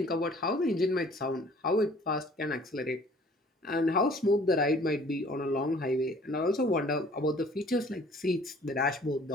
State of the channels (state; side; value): normal; both; correlation 0.54